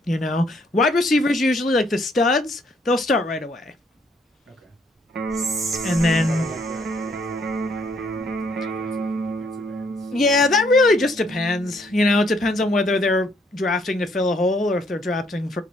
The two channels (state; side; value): normal; both; correlation 0.68